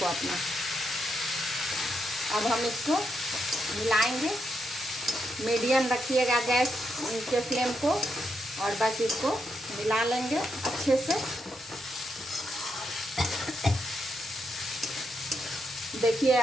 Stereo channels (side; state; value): both; normal; correlation 0.81